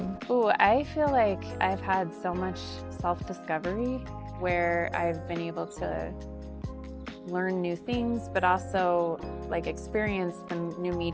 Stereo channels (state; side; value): identical; both; correlation 1.00